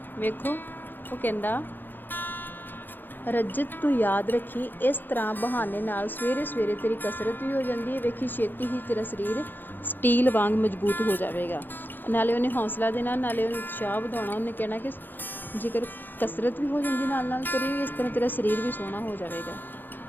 ਵੇਖੋ ਉਹ ਕਹਿੰਦਾ ਰਜਤ ਤੂੰ ਯਾਦ ਰੱਖੀ, ਇਸ ਤਰ੍ਹਾਂ ਬਹਾਨੇ ਨਾਲ ਸਵੇਰੇ ਸਵੇਰੇ ਤੇਰੀ ਕਸਰਤ ਵੀ ਹੋ ਜਾਂਦੀ ਹੈ, ਵੇਖੀ ਛੇਤੀ ਹੀ ਤੇਰਾ ਸਰੀਰ ਸਟੀਲ ਵਾਂਗ ਮਜ਼ਬੂਤ ਹੋ ਜਾਵੇਗਾ। ਨਾਲੇ ਉਹਨੇ ਹੌਸਲਾ ਦੇਣਾ, ਨਾਲੇ ਉਹਨੇ ਉਤਸ਼ਾਹ ਵਧਾਉਣਾ। ਉਹਨੇ ਕਹਿਣਾ ਕਿ ਜੇਕਰ ਕਸਰਤ ਵੀ ਹੋ ਜਾਂਦੀ ਨਾਲ ਨਾਲ ਤੇਰੀ, ਇਸ ਤਰ੍ਹਾਂ ਤੇਰਾ ਸਰੀਰ ਵੀ ਸੋਹਣਾ ਹੋ ਜਾਵੇਗਾ।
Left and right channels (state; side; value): late; right; 0.092 ms